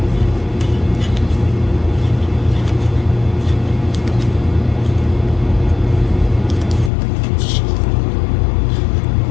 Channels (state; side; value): drops out; right; at 6.9 s